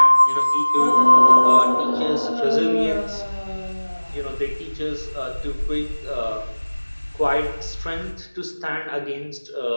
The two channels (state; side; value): inverted; both; correlation -1.00